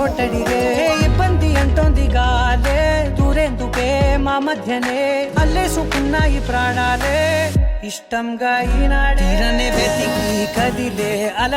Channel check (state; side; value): identical; both; correlation 1.00